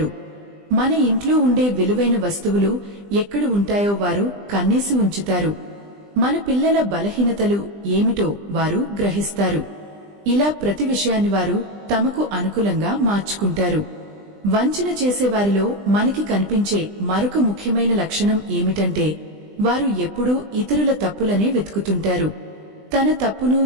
మన ఇంట్లో ఉండే విలువైన వస్తువులు ఎక్కడ ఉంటాయో వారు కన్నేసి ఉంచుతారు. మన పిల్లల బలహీనతలు ఏమిటో వారు గ్రహిస్తారు. ఇలా ప్రతి విషయాన్ని వారు తమకు అనుకూలంగా మార్చుకుంటారు. వంచన చేసేవారిలో మనకి కనిపించే మరొక ముఖ్యమైన లక్షణం ఏమిటంటే వారు ఎప్పుడూ ఇతరుల తప్పులనే వెతుకుతుంటారు. తన తప్పును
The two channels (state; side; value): late; left; 20 ms